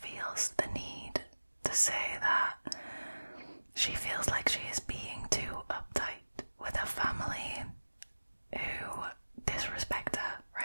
the need to say that she feels like she is being too uptight with her family who disrespect her,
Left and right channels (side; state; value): both; inverted; correlation -1.00